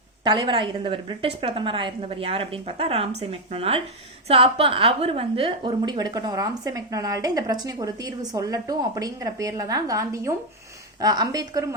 தலைவராக இருந்தவர், பிரிட்டிஷ் பிரதமராக இருந்தவர் யார் அப்படின்னு பார்த்தா ராம்சே மெக்டொனால்ட். ஸோ அப்போ அவர் வந்து ஒரு முடிவு எடுக்கட்டும், ராம்சே மெக்டொனால்டு இந்த பிரச்சனைக்கு ஒரு தீர்வு சொல்லட்டும் அப்படிங்கிற பேர்ல தான் காந்தியும் அம்பேத்கரும்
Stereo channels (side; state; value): both; normal; correlation 0.04